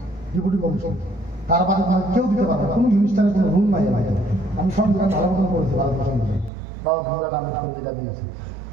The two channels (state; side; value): drops out; left; at 6.5 s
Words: ডেপুটি কমিশন তার বাদে কেউ দিতে পারবে কোনো মিনিস্টারের কোনো রুল নাই আমি সংবিধান ভালো মতন করেছি পারমিশন দিয়ে বাবা ভূমিকা কামিজ করে যেটা দিয়েছে